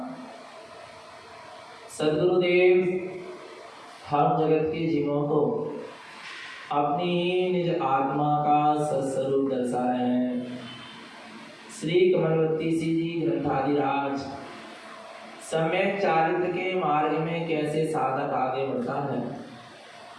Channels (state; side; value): identical; both; correlation 1.00